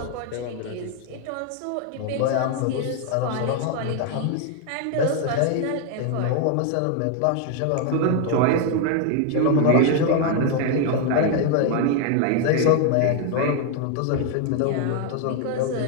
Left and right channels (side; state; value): both; different; correlation 0.00